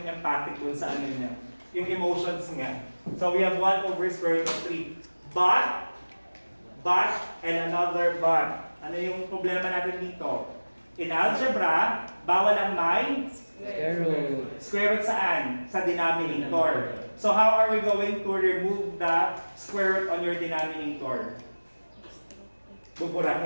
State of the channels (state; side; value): inverted; both; correlation -1.00